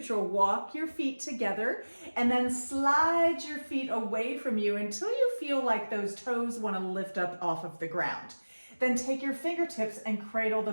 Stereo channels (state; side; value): inverted; both; correlation -1.00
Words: walk your feet together and then slide your feet away from you until you feel like those toes want to lift up off of the ground. Then take your fingertips and cradle the